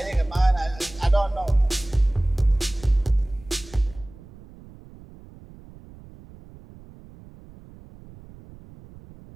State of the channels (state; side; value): noise; right; rumble, 21 dB below the sound